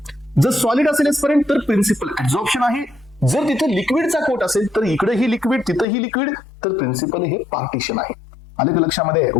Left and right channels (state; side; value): drops out; right; at 5.9 s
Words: जर सॉलिड असेल एस्पेरेंट तर प्रिन्सिपल ऍब्झॉर्प्शन आहे. जर तिथे लिक्विडचा कोट असेल तर इकडेही लिक्विड तिथेही लिक्विड, तर प्रिन्सिपल हे पार्टिशन आहे. आले का लक्षामध्ये?